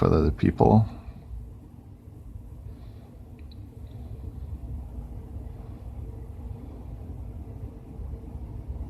with other people?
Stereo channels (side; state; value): both; identical; correlation 1.00